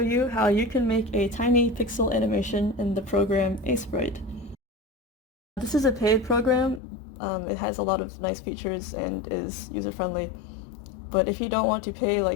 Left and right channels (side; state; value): right; drops out; at 6.8 s